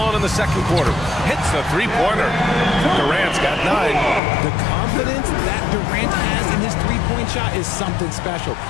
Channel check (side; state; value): right; drops out; at 4.2 s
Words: in the second quarter. Hits the 3-pointer. Durant's got 9. The confidence that Durant has in his 3-point shot is something special.